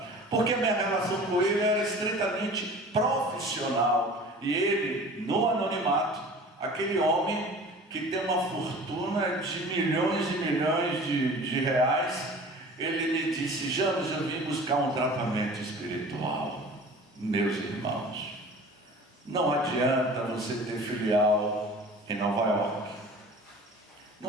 porque a minha relação com ele era estritamente profissional. E ele, no anonimato, aquele homem que tem uma fortuna de milhões e milhões de reais, ele me disse: James, eu vim buscar um tratamento espiritual. Meus irmãos, não adianta você ter filial em Nova York,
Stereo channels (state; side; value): normal; both; correlation 0.42